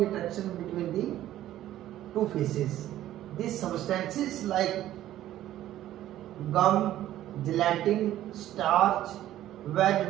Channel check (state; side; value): quieter; left; 13.2 dB